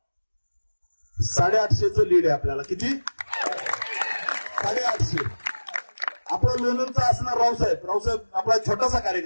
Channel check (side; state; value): both; inverted; correlation -1.00